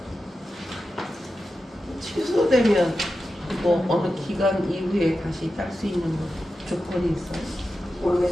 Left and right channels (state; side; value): normal; both; correlation 0.91